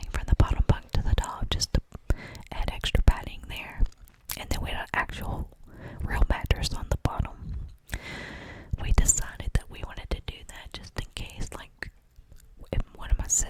from the bottom bunk to the top just to add extra padding there.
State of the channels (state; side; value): identical; both; correlation 1.00